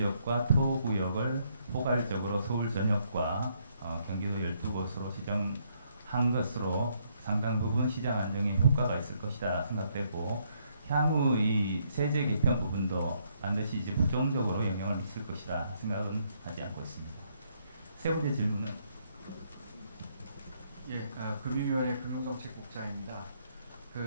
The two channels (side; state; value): both; inverted; correlation -0.72